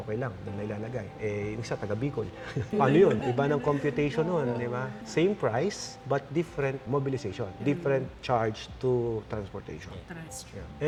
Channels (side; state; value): both; identical; correlation 1.00